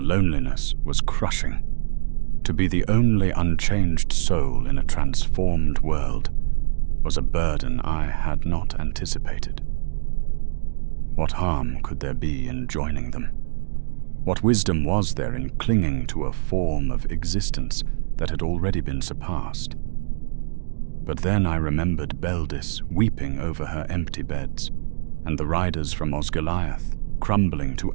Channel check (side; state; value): left; silent; digital silence